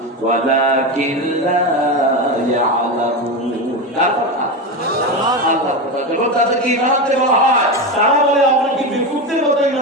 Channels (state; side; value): normal; both; correlation 0.17